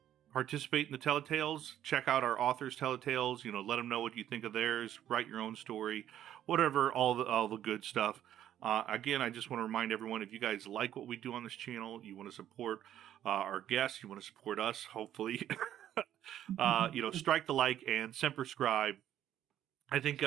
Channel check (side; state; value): left; quieter; 11.3 dB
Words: Participate in the Telletales. Check out our authors' Telletales. Let them know what you think of theirs. Write your own story, whatever. All the good stuff. Again, I just want to remind everyone, if you guys like what we do on this channel, you want to support our guests, you want to support us, hopefully, strike the like and semper scribe. I think